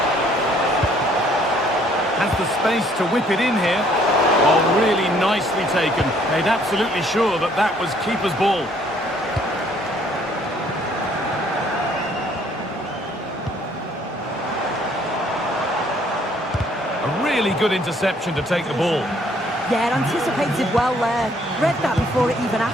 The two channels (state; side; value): normal; both; correlation 0.63